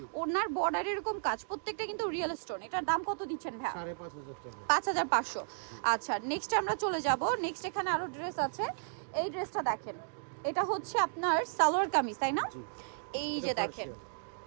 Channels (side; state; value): left; silent; digital silence